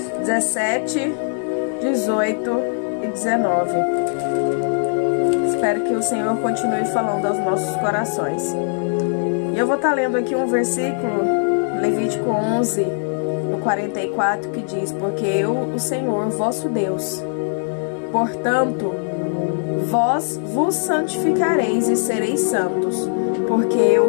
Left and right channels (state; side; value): silent; right; digital silence